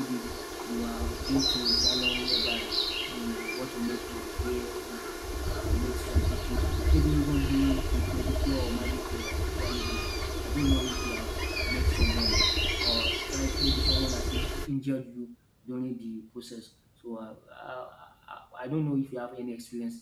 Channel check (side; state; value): both; identical; correlation 1.00